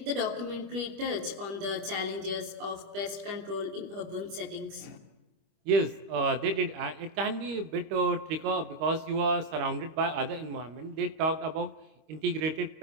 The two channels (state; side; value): late; left; 25 ms